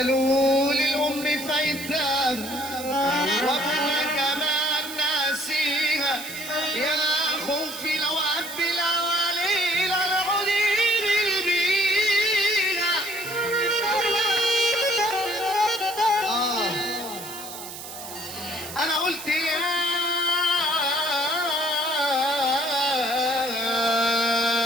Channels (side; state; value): right; noise; hiss, 11 dB below the sound